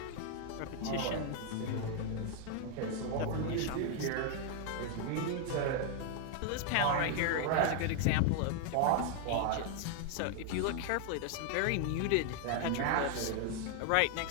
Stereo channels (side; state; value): both; different; correlation 0.00